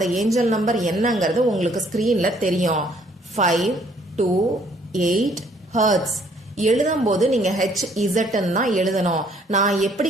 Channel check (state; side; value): normal; both; correlation 0.63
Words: ஏஞ்சல் நம்பர் என்னங்கிறது உங்களுக்கு ஸ்கிரீன்ல தெரியும். 528 ஹெர்ட்ஸ். எழுதும் போது நீங்க HZ தான் எழுதணும். நான் எப்படி